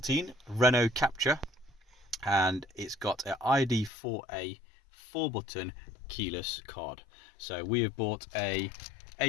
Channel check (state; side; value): drops out; right; at 3.9 s